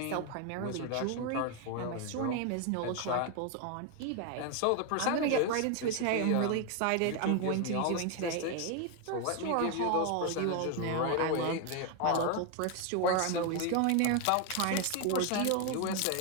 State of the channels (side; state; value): both; different; correlation 0.01